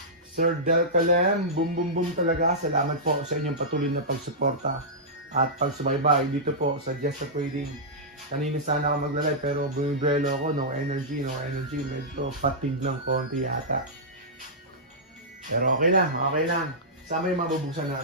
Sir Del Calem, boom, boom, boom talaga. Salamat po sa inyong patuloy na pagsuporta at pagsubaybay dito po sa Just a Trading. Kanina sana ako maglalay, pero bumibrelo ako, no energy. Medyo fatigue ng konti yata. Pero okay lang. Sama yung mabubuksan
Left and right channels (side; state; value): both; normal; correlation -0.13